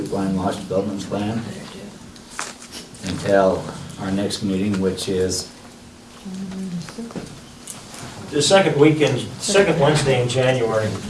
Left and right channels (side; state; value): both; identical; correlation 1.00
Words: Lodge Development Plan until our next meeting, which is The second weekend, second Wednesday in January.